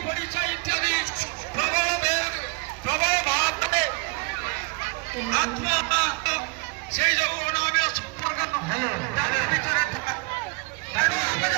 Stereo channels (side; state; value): left; quieter; 30.7 dB